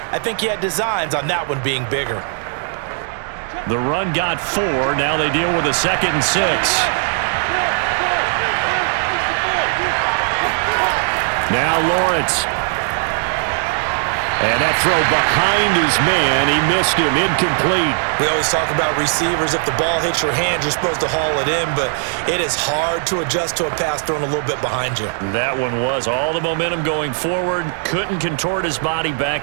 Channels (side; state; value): left; silent; 63 dB below the other